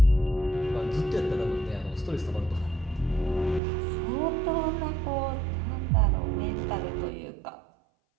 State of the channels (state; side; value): drops out; left; at 3.6 s